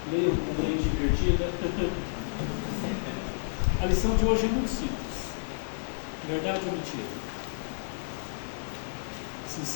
leiam com mente divertida. A lição de hoje é muito simples. Verdade ou mentira?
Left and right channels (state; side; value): silent; right; digital silence